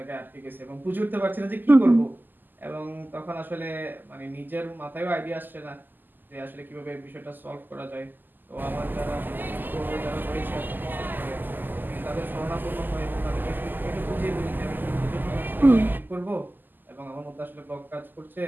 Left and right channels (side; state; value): left; late; 0.089 ms